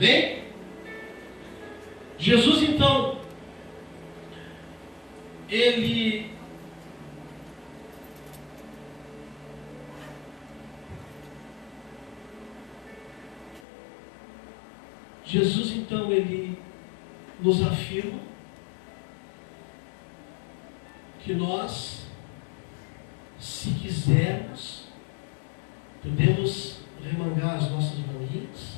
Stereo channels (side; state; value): right; drops out; at 13.6 s